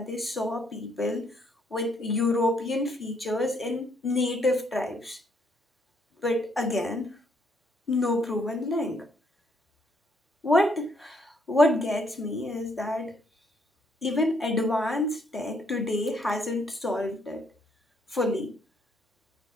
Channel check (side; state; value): both; normal; correlation 0.70